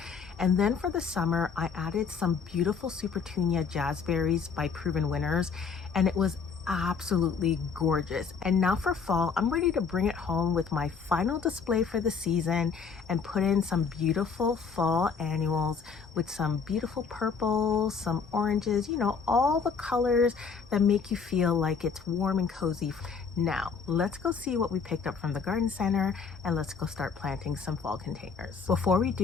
And then for the summer, I added some beautiful Supertunia jazzberries by Proven Winners, and it was absolutely gorgeous. And now for fall, I'm ready to bring it home with my final display for the season and put in some beautiful fall annuals with some beautiful purples, some oranges, you know, all the colors that make you feel like it's warm and cozy. Now, let's go see what we picked up from the garden center and let's go start planting some fall containers. Before we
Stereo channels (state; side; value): quieter; right; 5.6 dB